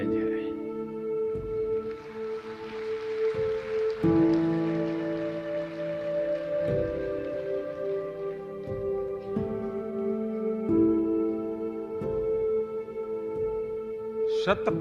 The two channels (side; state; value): both; identical; correlation 1.00